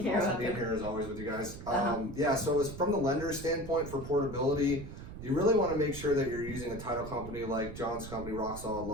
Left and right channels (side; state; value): right; noise; rumble, 11 dB below the sound